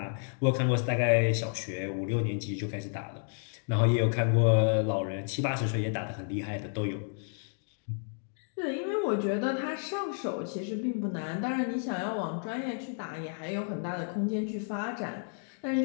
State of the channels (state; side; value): silent; right; 57 dB below the other